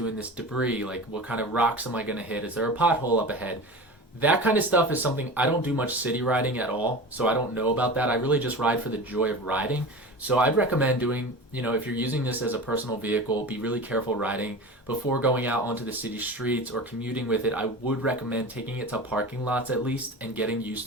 in this debris? Like, what kind of rocks am I going to hit? Is there a pothole up ahead? That kind of stuff is something I don't do much city riding at all, so I don't know about that. I really just ride for the joy of riding. So I'd recommend doing, if you're using this as a personal vehicle, be really careful riding. Before going out onto the city streets or commuting with it, I would recommend taking it to parking lots at least and getting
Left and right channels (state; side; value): normal; both; correlation 0.32